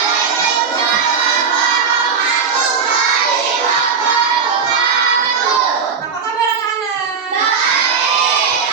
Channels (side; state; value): left; quieter; 5.8 dB